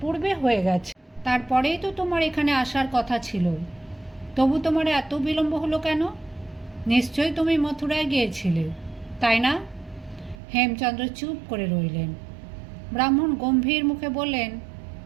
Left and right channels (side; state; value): left; drops out; at 10.4 s